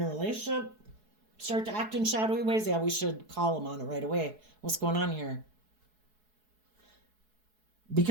a relationship start to act in shadowy ways, yeah, we should call them on it right away. What's going on here?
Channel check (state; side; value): late; left; 4.7 ms